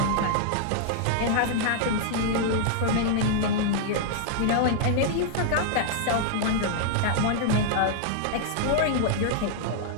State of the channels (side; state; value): both; different; correlation -0.01